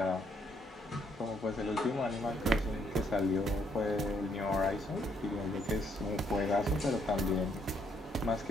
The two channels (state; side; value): normal; both; correlation 0.72